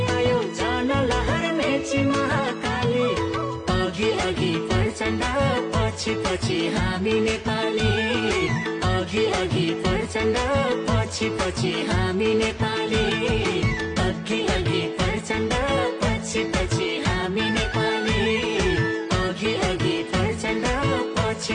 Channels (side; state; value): both; identical; correlation 1.00